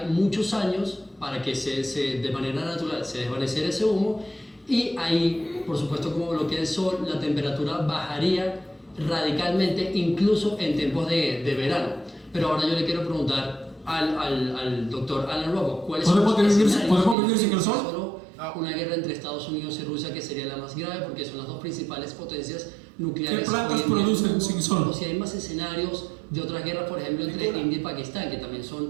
muchos años para que de manera natural se desvaneciera ese humo, y ahí, por supuesto, como bloquea el sol, la temperatura bajaría radicalmente, incluso en tiempos de verano. Pero ahora yo le quiero preguntar al doctor Alan Robock, ¿cuáles son los escenarios? ¿Podemos vivir sin el sol? Solo una guerra entre Estados Unidos y Rusia, que sería la más grave porque son las dos principales potencias nucleares. ¿Qué plantas hoy en día. producen sin sol? O si hay más escenarios de otras guerras, por ejemplo, entre India y Pakistán, que también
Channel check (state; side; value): drops out; left; at 17.2 s